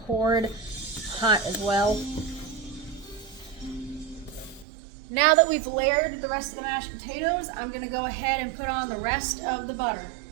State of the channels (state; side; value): drops out; left; at 4.7 s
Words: hot as well. Now that we've layered the rest of the mashed potatoes, I'm going to go ahead and put on the rest of the butter.